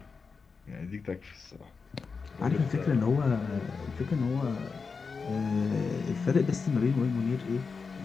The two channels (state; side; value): quieter; right; 5.0 dB